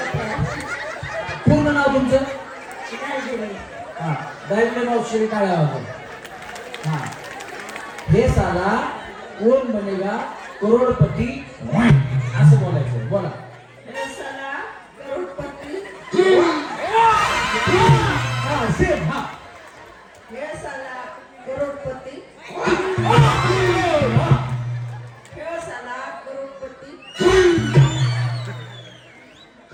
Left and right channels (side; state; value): both; identical; correlation 1.00